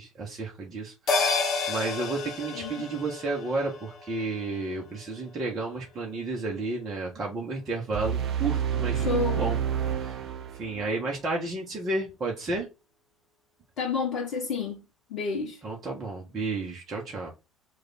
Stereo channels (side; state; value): both; normal; correlation 0.33